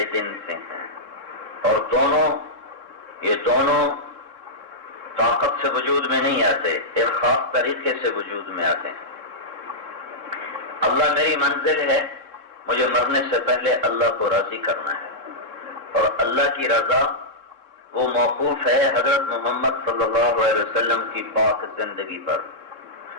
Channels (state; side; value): late; left; 3.6 ms